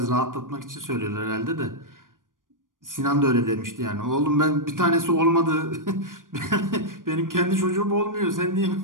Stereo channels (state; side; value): late; left; 0.89 ms